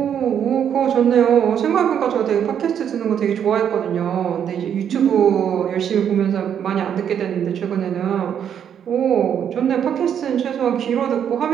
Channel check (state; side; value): quieter; left; 8.7 dB